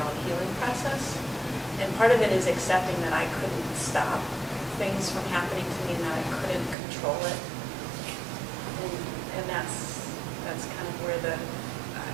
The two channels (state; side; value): drops out; left; at 6.8 s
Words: healing process. And part of it is accepting that I couldn't stop things from happening to me and that I couldn't control it. And that's kind of where the,